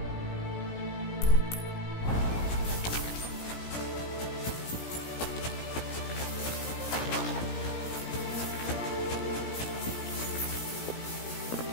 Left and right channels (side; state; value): right; late; 17 ms